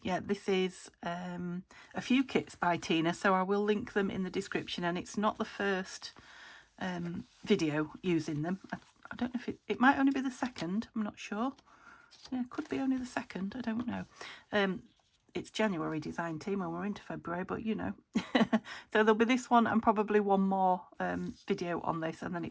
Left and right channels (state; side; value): identical; both; correlation 1.00